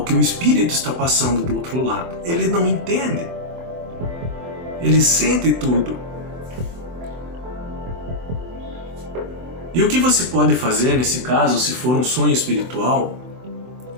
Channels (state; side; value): late; left; 24 ms